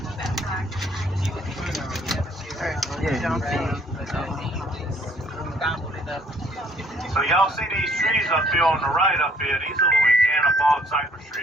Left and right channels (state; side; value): normal; both; correlation 0.62